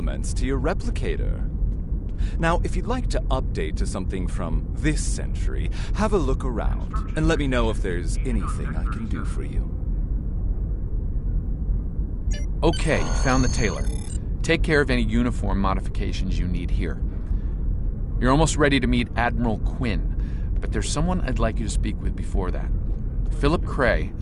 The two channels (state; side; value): identical; both; correlation 1.00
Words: to your replicator. Now, if you'd like to update to something from this century, have a look around and let me know if there's anything I can do for you. Okay, found the tailor. Take care of any uniform modifications you need here. You're almost ready to meet Admiral Quinn, but there's someone I'd like you to speak with before that. Philip Cray